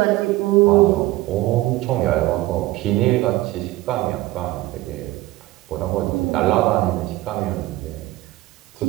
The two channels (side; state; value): left; quieter; 18.0 dB